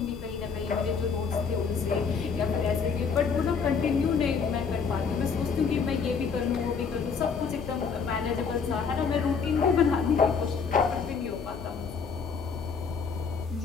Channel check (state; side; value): quieter; right; 5.7 dB